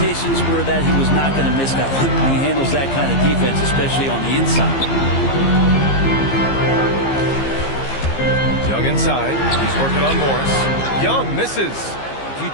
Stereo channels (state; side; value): late; right; 15 ms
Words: were that he was not going to miss that one. He handles that kind of defense, especially on the inside. Young inside. He's working on Morris. Young misses. If you